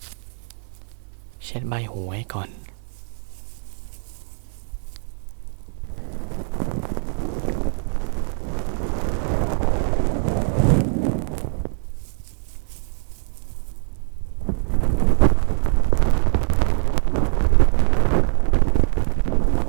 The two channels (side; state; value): left; silent; digital silence